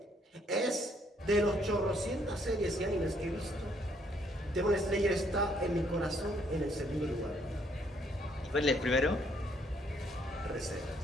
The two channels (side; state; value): both; normal; correlation 0.68